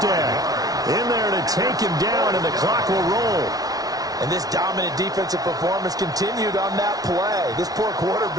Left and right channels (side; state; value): left; late; 0.18 ms